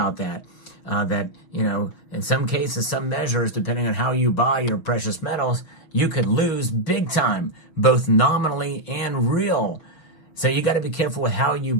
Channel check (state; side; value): late; right; 6.2 ms